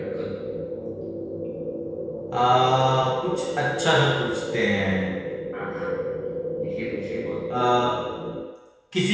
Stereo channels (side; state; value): both; identical; correlation 1.00